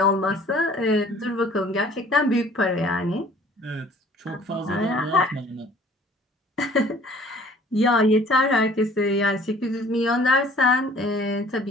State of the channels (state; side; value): normal; both; correlation 0.53